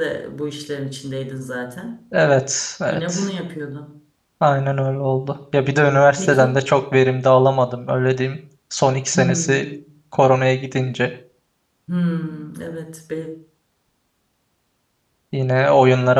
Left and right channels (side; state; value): both; identical; correlation 1.00